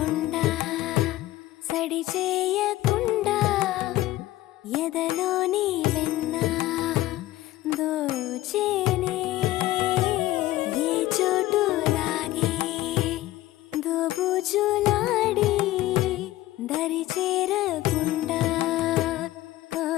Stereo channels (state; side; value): quieter; right; 16.2 dB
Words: సడి చేయకుండా ఎదలోని వెన్న దోచేనే ఏ చోటు లాగే దోబుజులాడి దరి చేరకుండా